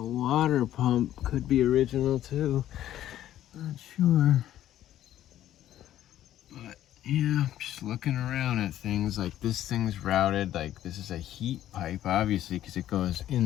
water pump could be original too. Not sure. But yeah, just looking around at things, like this thing's routed, like this is a heat pipe, obviously, because it goes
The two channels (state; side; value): quieter; right; 12.4 dB